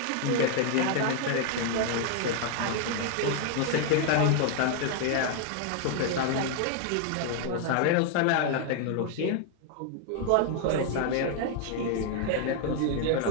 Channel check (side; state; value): both; different; correlation 0.00